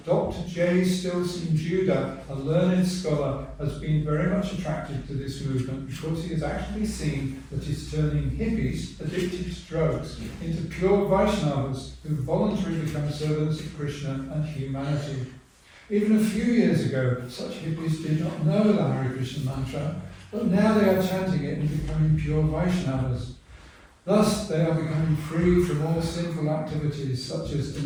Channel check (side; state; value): both; identical; correlation 1.00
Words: Dr. J. Stilson Judah, a learned scholar, has been very much attracted to this movement because he has actually seen that it's turning hippies addicted to drugs into pure Vaishnavas who voluntarily become servants of Krishna and humanity. Even a few years ago, such hippies did not know the Hare Krishna mantra, but now they are chanting it and becoming pure Vaishnavas. Thus, they are becoming free from all sinful activities such as